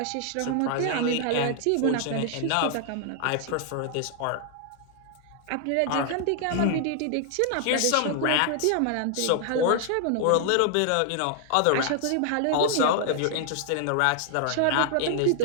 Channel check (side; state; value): both; different; correlation 0.00